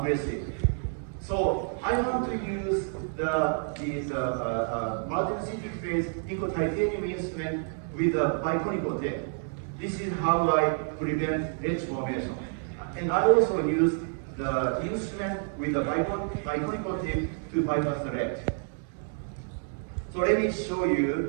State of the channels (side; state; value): left; silent; 59 dB below the other